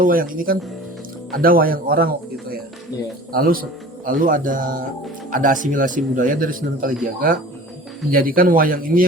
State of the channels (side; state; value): both; normal; correlation 0.42